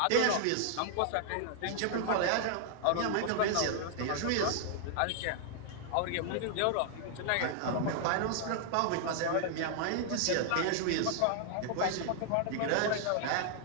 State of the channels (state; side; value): different; both; correlation 0.00